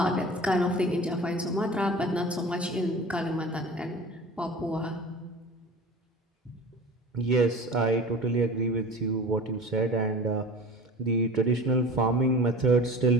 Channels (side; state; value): both; normal; correlation 0.38